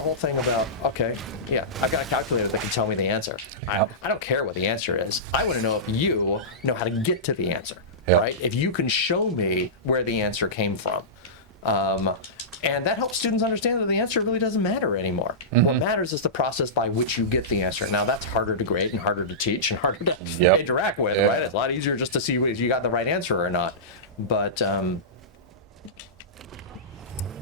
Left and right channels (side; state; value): both; normal; correlation -0.17